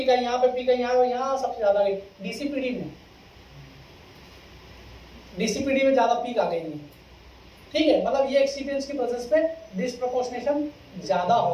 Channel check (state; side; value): identical; both; correlation 1.00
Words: आई, यहाँ पे पीक आई, यहाँ सबसे ज्यादा गई DCPD में ज्यादा पीक आ गई है, ठीक है। मतलब ये एक्सिपिएंट्स की प्रेजेंस पे डिस्प्रोपोर्शनेशन ज्यादा